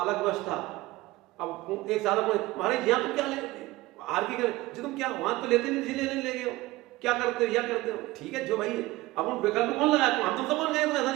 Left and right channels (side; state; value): left; quieter; 19.0 dB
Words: अलग व्यवस्था। अब एक साल महाराज यहाँ तुम क्या ले आर की जी तुम क्या वहां तो लेते नहीं, लेने ले गए हो, क्या करते हो, या करते हो, ठीक है जो भाई है। अब उन विकल्प कौन लगाया, हम तुम सब कौन गए, ऐसा